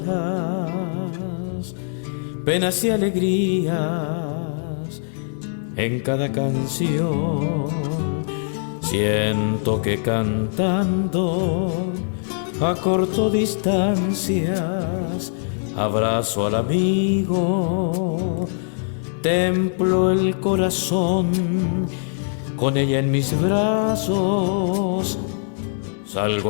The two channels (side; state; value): right; silent; 64 dB below the other